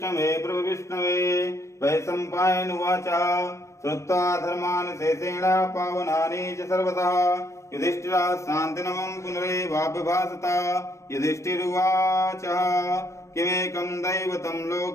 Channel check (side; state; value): right; late; 0.14 ms